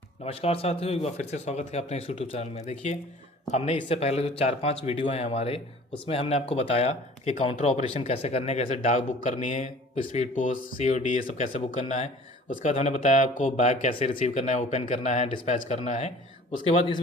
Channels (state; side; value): normal; both; correlation 0.48